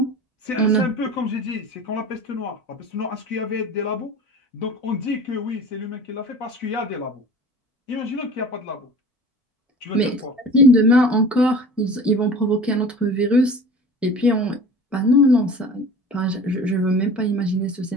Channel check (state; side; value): normal; both; correlation 0.39